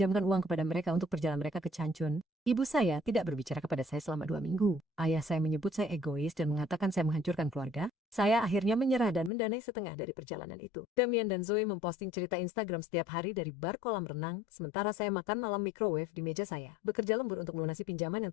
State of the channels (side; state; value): right; drops out; at 9.3 s